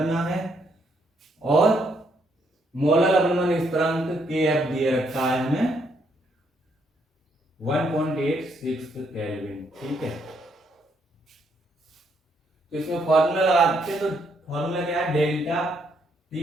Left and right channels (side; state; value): both; normal; correlation 0.73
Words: है, और मोलर लवणवन स्थिरांक Kf दिए रखा है हमें 1.86 केल्विन। ठीक है, तो इसमें फॉर्मूला लगाते हैं, तो फॉर्मूला क्या है, डेल्टा